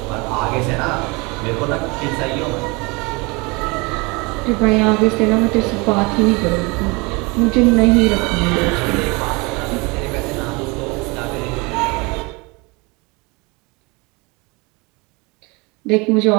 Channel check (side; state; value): left; quieter; 27.2 dB